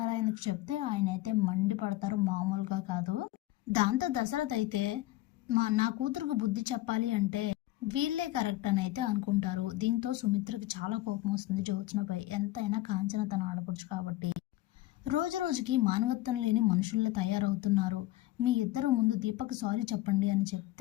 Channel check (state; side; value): quieter; right; 16.8 dB